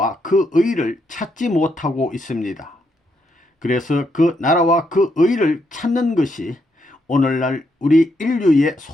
그 의를 찾지 못하고 있습니다. 그래서 그 나라와 그 의를 찾는 것이 오늘날 우리 인류의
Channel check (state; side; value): normal; both; correlation 0.78